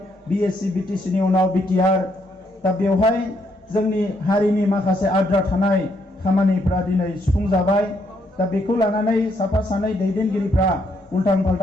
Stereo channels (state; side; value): normal; both; correlation 0.74